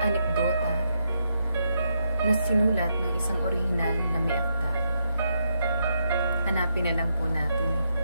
na sinulat ng isang orihinal na may akda. Hanapin na lang po natin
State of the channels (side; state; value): both; inverted; correlation -0.80